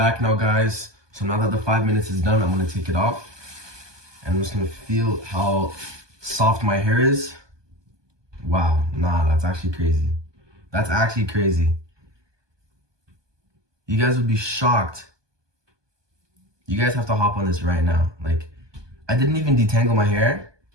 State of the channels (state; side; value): late; left; 1.2 ms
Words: now, guys. So now that the 5 minutes is done, I'm gonna take it off. And I'm just gonna feel how soft my hair is. Wow, nah, that's actually crazy. That's actually crazy. You guys would be shocked. You guys have to hop on this right now. Like, I didn't even detangle my hair